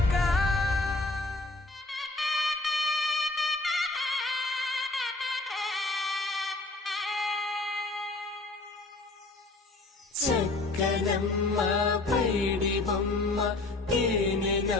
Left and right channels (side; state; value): right; quieter; 3.1 dB